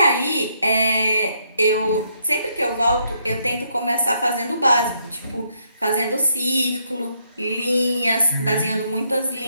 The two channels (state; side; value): inverted; both; correlation -0.74